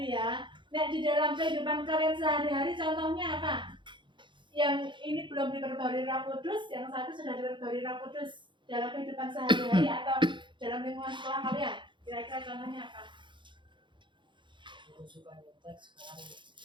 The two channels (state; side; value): late; left; 0.23 ms